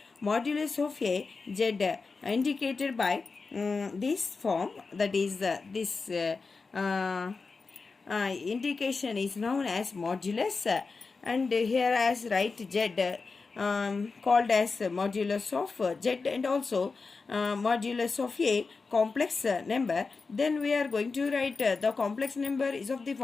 modulus of a z indicated by this form, that is this indication is known as modulus, and here as write z called as modulus of z and also modulus of a complex number, then we are going to write the complex number is of the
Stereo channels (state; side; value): quieter; right; 4.4 dB